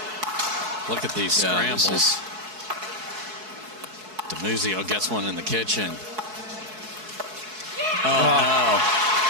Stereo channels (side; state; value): left; late; 4.6 ms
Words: Look at these scrambles. DiMuzio gets one in the kitchen. Oh, no.